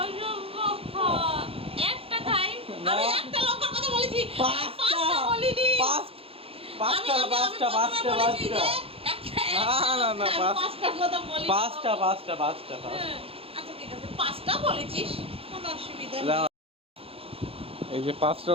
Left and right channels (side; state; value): left; late; 0.27 ms